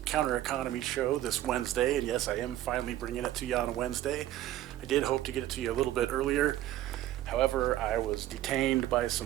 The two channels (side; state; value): left; quieter; 13.7 dB